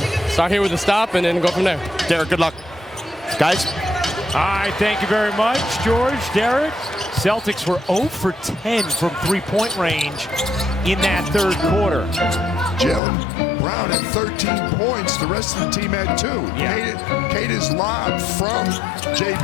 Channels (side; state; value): right; drops out; at 13.0 s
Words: Start here with a stop and then go from there. Derek, good luck. Guys? All right, thank you very much, George, Derek. Celtics were 0 for 10 from three-point range in that third quarter. Jaylen Brown had 13 points. The rest of the team had 2. Yeah. Kata's lob from